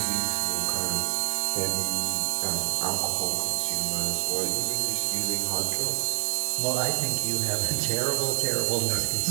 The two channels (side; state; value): left; quieter; 37.5 dB